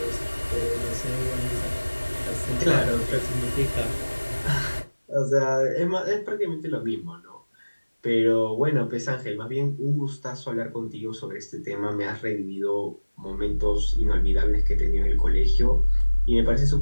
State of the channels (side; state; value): both; inverted; correlation -1.00